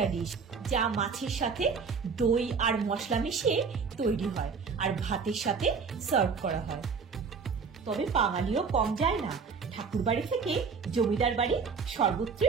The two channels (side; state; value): left; quieter; 5.5 dB